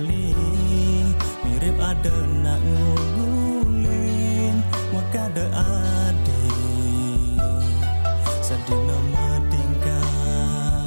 mirip ada nak ngulin wakada adi sedina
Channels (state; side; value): inverted; both; correlation -1.00